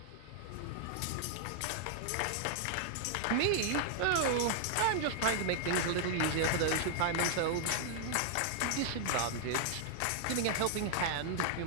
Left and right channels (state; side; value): different; both; correlation -0.01